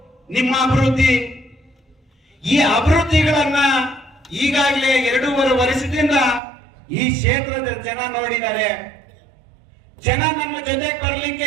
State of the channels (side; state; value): left; drops out; at 6.4 s